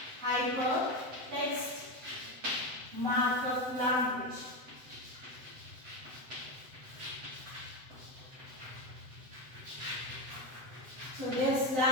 markup language. So this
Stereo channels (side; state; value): left; late; 7.8 ms